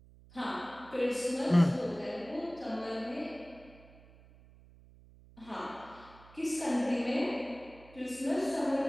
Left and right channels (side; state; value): right; noise; hum, 23 dB below the sound